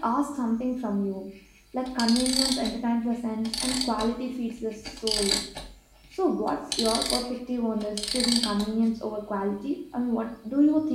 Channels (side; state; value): both; identical; correlation 1.00